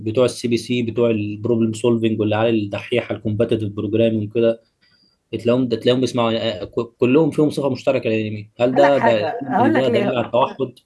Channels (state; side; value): identical; both; correlation 1.00